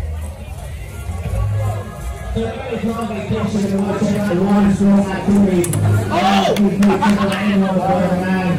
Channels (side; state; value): both; identical; correlation 1.00